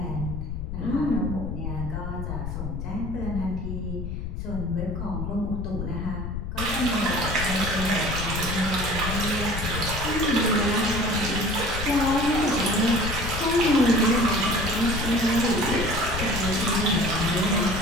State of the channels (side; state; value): left; noise; rumble, 5 dB below the sound